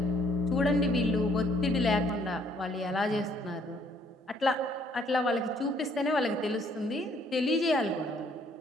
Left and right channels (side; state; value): both; normal; correlation 0.65